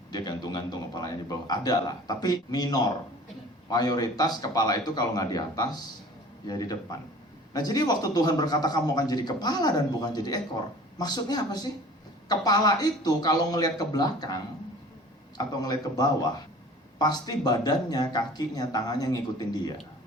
dia gantung-gantung kepalanya di bawah. Ada lah, tapi minor. Mayoritas kepala itu kalau nggak di atas, ya di depan. Nah, jadi waktu Tuhan berkata kamu akan jadi kepala dan bukan jadi ekor, maksudnya apa sih? Kepala itu kalau ngelihat ke belakang atau ngelihat ke bawah, pasti badannya, kakinya, tangannya ngikutin dia.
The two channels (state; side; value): normal; both; correlation 0.45